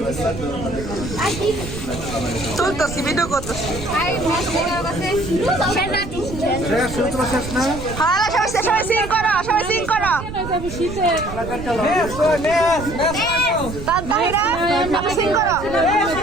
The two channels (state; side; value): noise; right; rumble, 10 dB below the sound